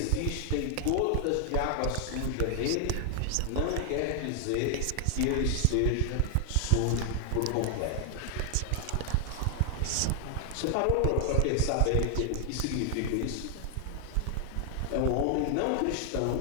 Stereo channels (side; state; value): both; different; correlation 0.00